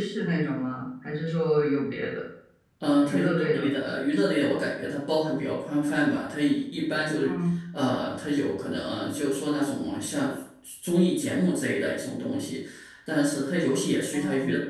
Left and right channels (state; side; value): identical; both; correlation 1.00